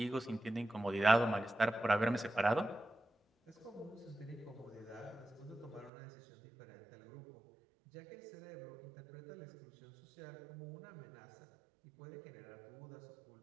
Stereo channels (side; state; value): left; drops out; at 5.9 s